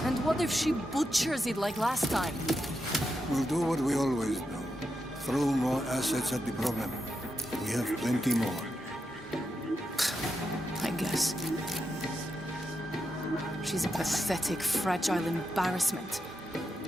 And what if she butchers it like last time? We'll do what we always do. Throw more assets at the problem. We have plenty more. I guess. She's a pathetic, fragile embarrassment.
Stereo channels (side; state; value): both; normal; correlation 0.86